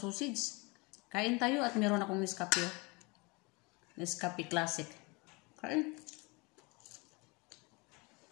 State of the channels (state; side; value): quieter; right; 27.5 dB